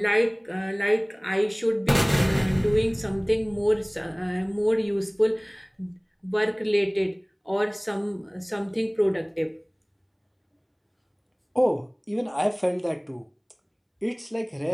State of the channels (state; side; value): identical; both; correlation 1.00